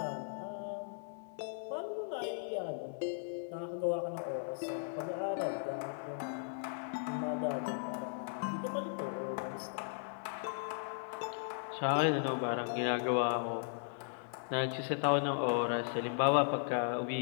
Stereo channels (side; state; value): right; silent; 53 dB below the other